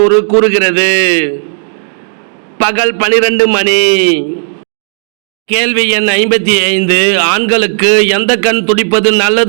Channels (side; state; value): left; silent; digital silence